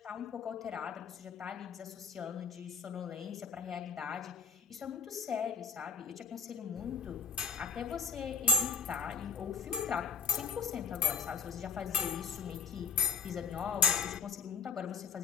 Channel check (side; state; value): right; quieter; 6.0 dB